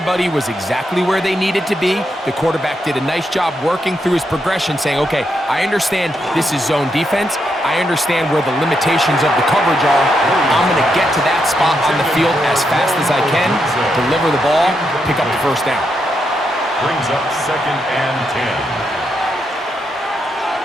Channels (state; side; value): normal; both; correlation 0.81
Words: was exactly where they needed to be. The quarterback did a nice job working through his progression, saying, okay, I understand this is zone defense. I understand where the limitations of the coverage are. I'm going to get to that spot on the field as fast as I can, deliver the ball, pick up the first down. Brings up second and